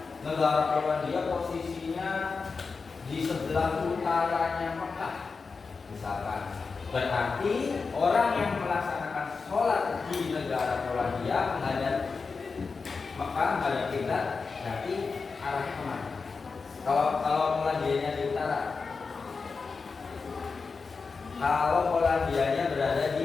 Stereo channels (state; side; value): quieter; right; 4.7 dB